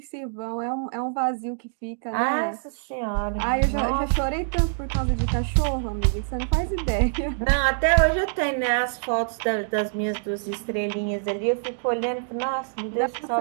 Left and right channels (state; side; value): silent; left; digital silence